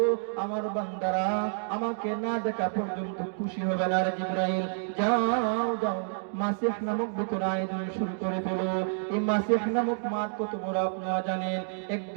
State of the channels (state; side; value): silent; left; digital silence